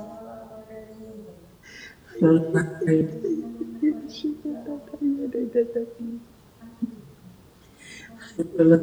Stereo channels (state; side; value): identical; both; correlation 1.00